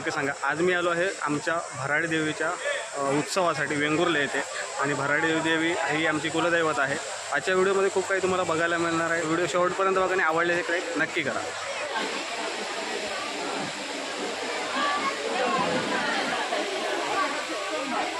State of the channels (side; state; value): both; identical; correlation 1.00